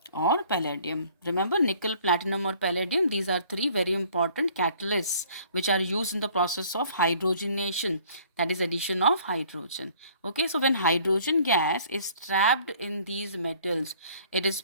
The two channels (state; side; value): inverted; both; correlation -0.56